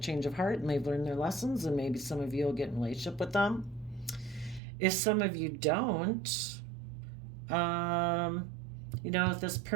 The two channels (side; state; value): left; drops out; at 4.6 s